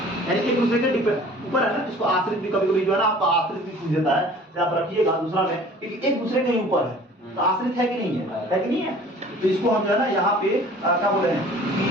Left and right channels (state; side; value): normal; both; correlation 0.48